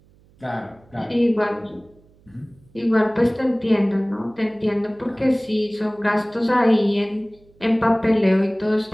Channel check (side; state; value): right; noise; hum, 30 dB below the sound